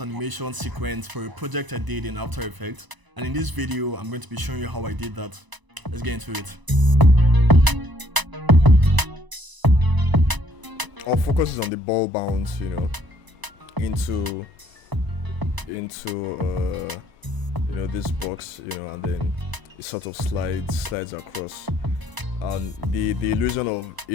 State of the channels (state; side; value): late; left; 1.0 ms